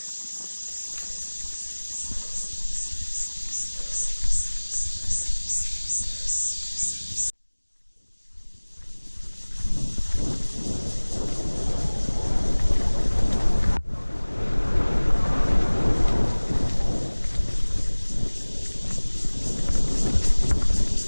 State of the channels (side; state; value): both; inverted; correlation -1.00